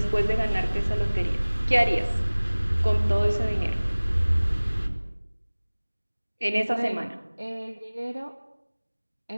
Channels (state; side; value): inverted; both; correlation -1.00